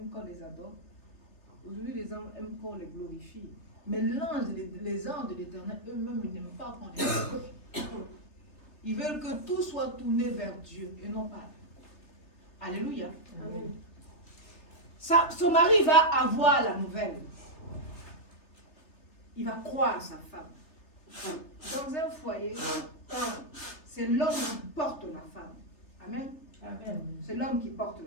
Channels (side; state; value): right; late; 3.3 ms